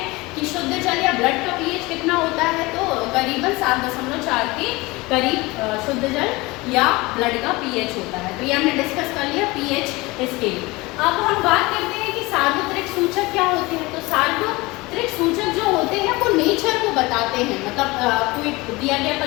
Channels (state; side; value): quieter; right; 22.6 dB